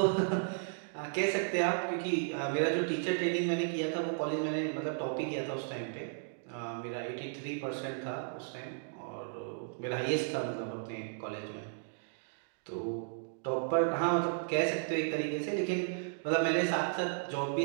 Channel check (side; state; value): left; silent; digital silence